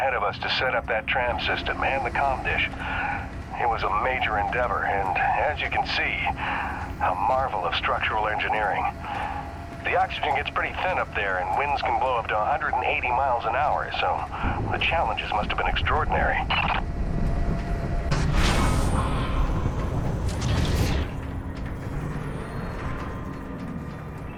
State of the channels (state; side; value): identical; both; correlation 1.00